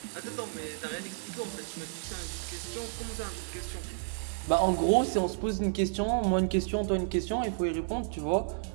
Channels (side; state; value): left; silent; digital silence